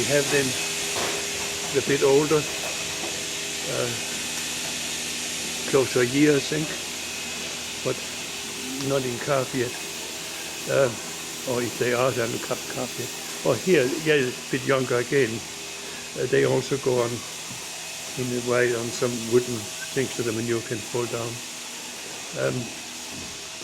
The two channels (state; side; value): identical; both; correlation 1.00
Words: have them a bit older, close to a year, I think, but not in calf yet. Or if they are, they haven't cut calf yet. Or here, yeah, a bit younger again. They also go on in a way on some wooden things so the manure can fall down.